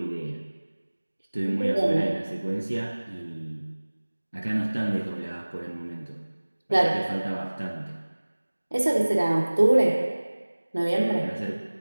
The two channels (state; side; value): inverted; both; correlation -1.00